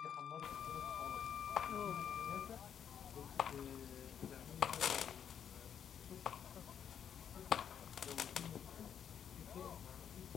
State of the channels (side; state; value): right; quieter; 8.5 dB